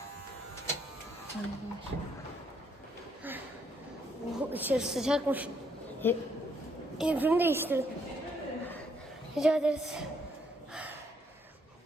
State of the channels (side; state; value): both; normal; correlation 0.71